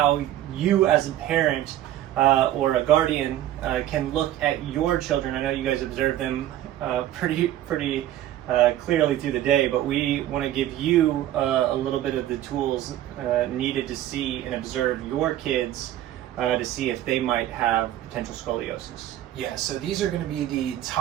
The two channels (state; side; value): quieter; left; 13.0 dB